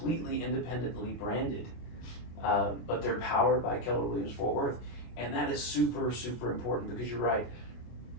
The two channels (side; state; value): right; late; 24 ms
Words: independently branded, but they're powered by Keller Williams Fort Worth. And that is super, super important because you're right.